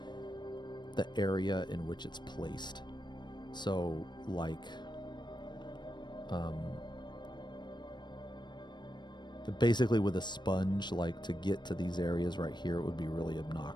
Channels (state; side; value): late; right; 0.22 ms